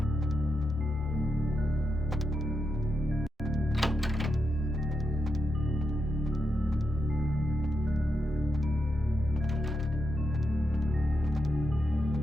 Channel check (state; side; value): normal; both; correlation 0.85